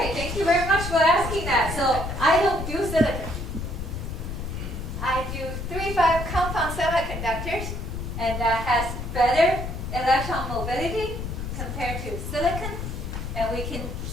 Thank you very much for asking that. So I don't do and that has better electron mobility compared to silicon. And we can,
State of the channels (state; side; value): noise; left; rumble, 5 dB below the sound